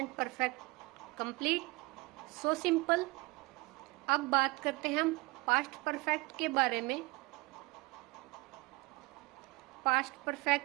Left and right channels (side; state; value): left; quieter; 23.5 dB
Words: perfect complete, so simple. अब बात करते हैं हम पास्ट परफेक्ट के बारे में। पास्ट